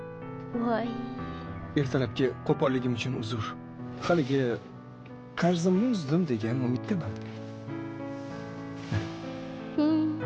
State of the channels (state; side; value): identical; both; correlation 1.00